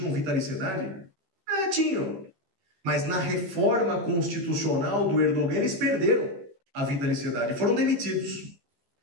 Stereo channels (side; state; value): left; late; 16 ms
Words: vitaliciedade? Tinham. Mas na reforma constitucional do Erdogan, eles perderam a vitaliciedade, foram demitidos.